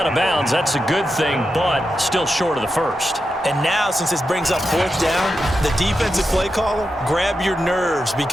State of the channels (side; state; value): both; normal; correlation 0.88